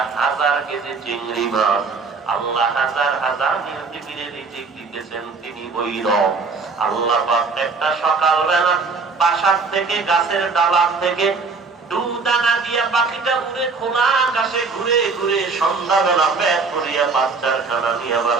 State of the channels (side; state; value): left; quieter; 4.5 dB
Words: 1000 কেজি চিংড়ি মাছ। আল্লাহ হাজার হাজার নীল তিমিরে রিজিক দিতেছেন, তিনি ওই রব। আল্লাহ পাক একটা সকালবেলা বাসার থেকে গাছের ডালার থেকে দানা দিয়া পাখিটা উড়ে খোলা আকাশে ঘুরে ঘুরে সন্ধ্যাবেলা পেট ভরিয়া বাচ্চার খানা নিয়ে